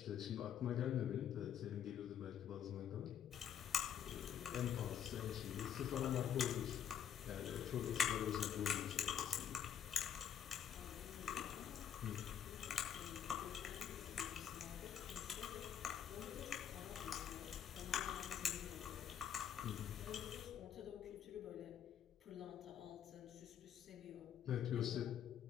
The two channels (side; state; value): right; quieter; 9.0 dB